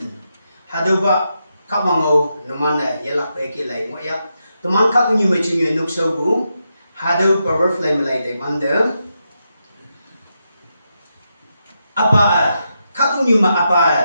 Hado ba kamango naman yelak pe ki lai mo ya. Teman ka kunyu me chunyu nuk so bu. Hado power flame lai de bande. Apa ka kunyu ma apa.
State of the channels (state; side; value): inverted; both; correlation -0.85